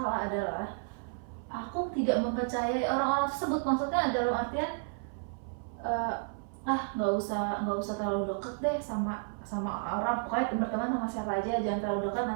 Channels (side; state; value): left; silent; 56 dB below the other